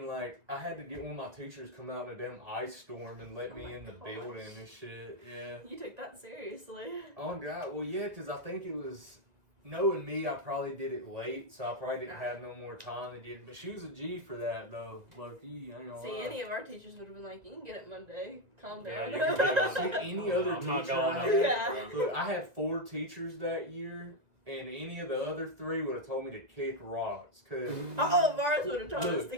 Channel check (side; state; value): left; late; 2.0 ms